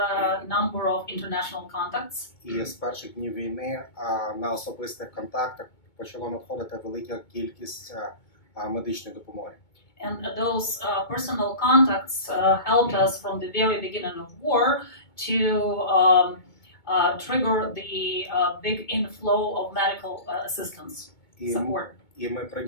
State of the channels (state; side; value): late; right; 2.2 ms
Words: number of international contacts. І з перших днів війни на особистих контактах почало надходити велика кількість медичної допомоги. And those personal contacts helped us from the very beginning of war to trigger the big inflow of medical assistance support. І ми